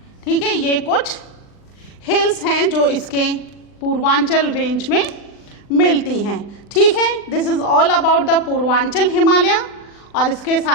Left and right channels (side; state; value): right; late; 39 ms